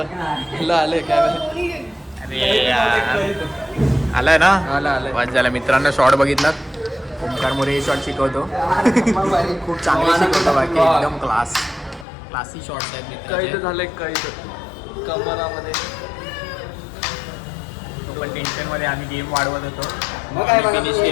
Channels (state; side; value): drops out; right; at 12.1 s